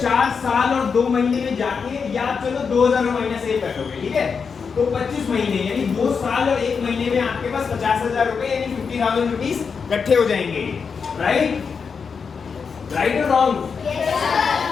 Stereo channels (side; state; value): right; quieter; 5.7 dB